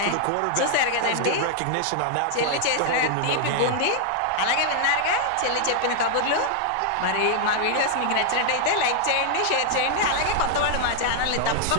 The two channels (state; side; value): different; both; correlation -0.01